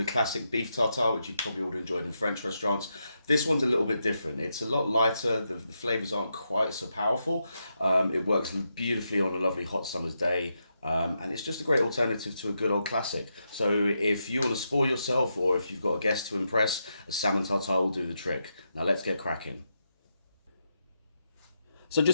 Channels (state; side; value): inverted; both; correlation -0.84